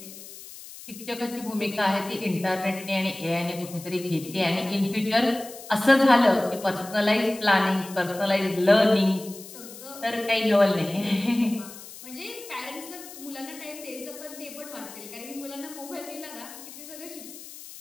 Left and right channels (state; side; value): noise; left; hiss, 15 dB below the sound